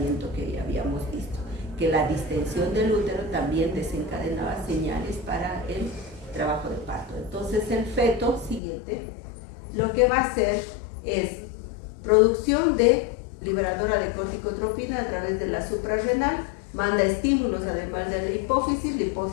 que ya habíamos visto, que la distensión del útero también desencadenaba señales para el trabajo de parto. Entonces el feto siguiente lo que va a hacer es producción de liberadora de corticotropina a través de la suprarrenal, manda estímulos además de la hipófisis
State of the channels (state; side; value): drops out; right; at 8.6 s